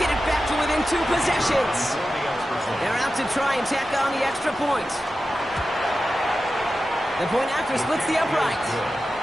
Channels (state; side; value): normal; both; correlation 0.92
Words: it back to within 2 possessions. They're out to try and tack on the extra point. The point after splits the upright.